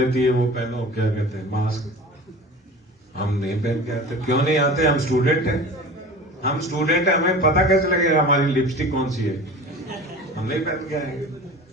है वो पहनो, क्या कहते हैं, मास्क. हम नहीं पहन के आते. क्यों नहीं आते? हम स्टूडेंट हैं. हम स्टूडेंट हैं, हमें पता कैसे लगेगा हमारी लिपस्टिक कौन सी है? हम नहीं पहन के आएंगे.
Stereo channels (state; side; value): normal; both; correlation 0.37